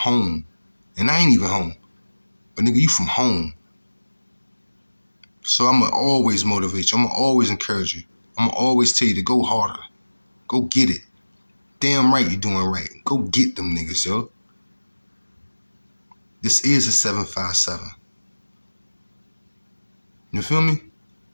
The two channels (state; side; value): inverted; both; correlation -1.00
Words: And I ain't even home. But nigga, you from home. So I'm gonna always motivate you. I'm gonna always encourage you. I'm gonna always tell you to go harder. Go get it. Damn right you're doing right. Go get them niggas, yo. This is a 757. You feel me?